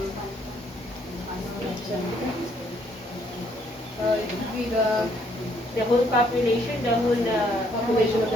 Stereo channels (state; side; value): normal; both; correlation 0.68